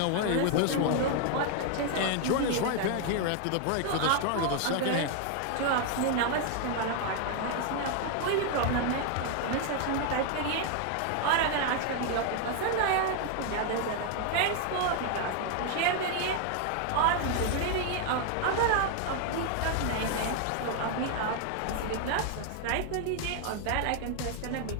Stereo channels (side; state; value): both; different; correlation 0.00